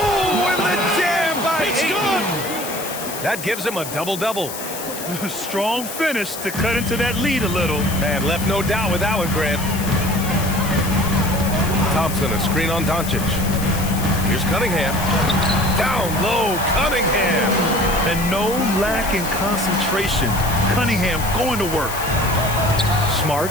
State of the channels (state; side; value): noise; left; hiss, 9 dB below the sound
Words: and the jam by Ayton. That gives him a double-double. Strong finish to cut into that lead a little. Man, left no doubt with that one, Grant. Thompson, a screen on Doncic. Here's Cunningham. Down low, Cunningham. And no lack in concentration. Cunningham going to work. Smart